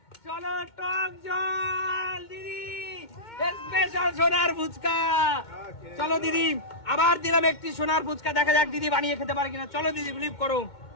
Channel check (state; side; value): late; right; 2.2 ms